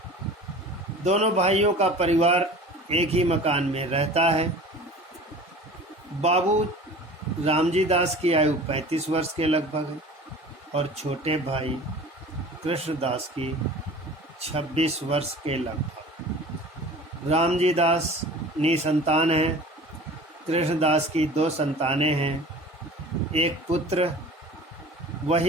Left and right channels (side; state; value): both; normal; correlation 0.41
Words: दोनों भाइयों का परिवार एक ही मकान में रहता है। बाबू रामजी दास की आयु 35 वर्ष के लगभग है और छोटे भाई कृष्णदास की 26 वर्ष के लगभग। रामजी दास निसंतान हैं। कृष्णदास की 2 संतानें हैं। एक पुत्र,